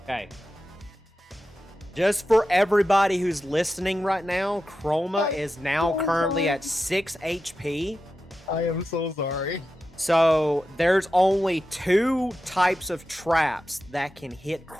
Okay. Just for everybody who's listening right now, Chroma is now currently at 6 HP. I am so sorry. So there's only 2 types of traps that can hit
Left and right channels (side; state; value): both; normal; correlation 0.91